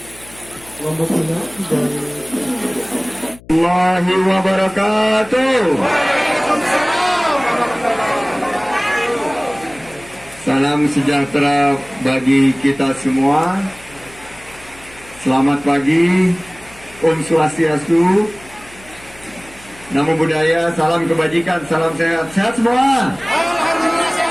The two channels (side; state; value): left; noise; hum, 22 dB below the sound